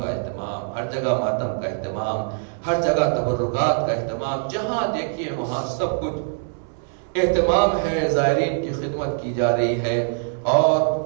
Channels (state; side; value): silent; left; 63 dB below the other